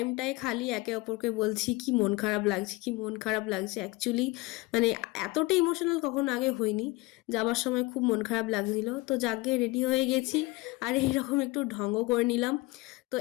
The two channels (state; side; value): quieter; right; 21.8 dB